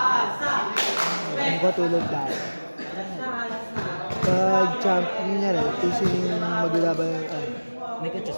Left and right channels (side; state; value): both; inverted; correlation -1.00